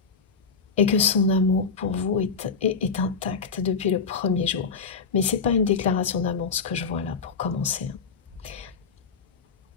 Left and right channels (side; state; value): right; quieter; 5.2 dB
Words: Et que son amour pour vous est intact depuis le premier jour. Mais ce n'est pas une déclaration d'amour, ce que je vois là, pour commencer.